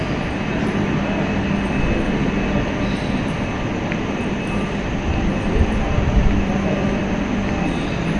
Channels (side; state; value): both; identical; correlation 1.00